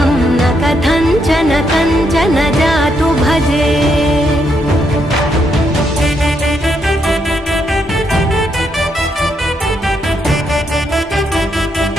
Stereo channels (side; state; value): both; normal; correlation 0.77